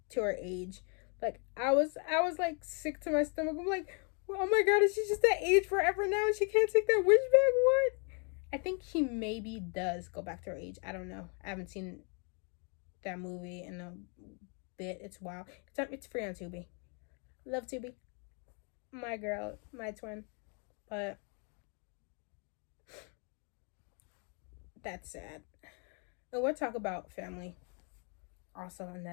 age? Like, I was like sick to my stomach. I'm like, oh my god, is she just that age forever now and she can't take that wish back? What? I think she maybe does go back to her age. I don't know. I haven't seen that movie in a bit. It's wild. It's free on Tubi. Love Tubi. My girl, my twin. But that's sad. And we'll talk about family also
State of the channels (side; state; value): right; quieter; 38.2 dB